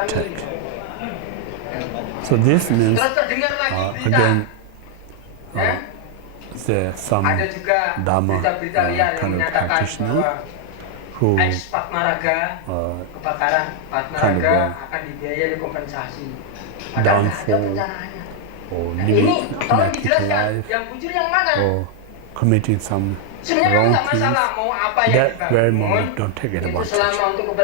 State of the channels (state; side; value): different; both; correlation 0.00